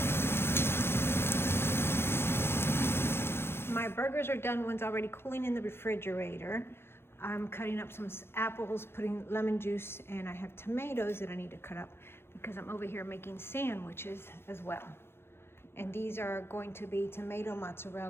My burgers are done. One's already cooling in the refrigerator. I'm cutting up some apples, putting lemon juice, and I have tomatoes that I need to cut up because I'm over here making sandwiches as well. And these are going to be tomato,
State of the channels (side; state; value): right; late; 0.12 ms